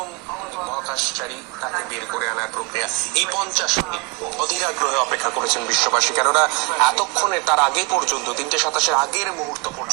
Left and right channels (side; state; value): left; quieter; 28.3 dB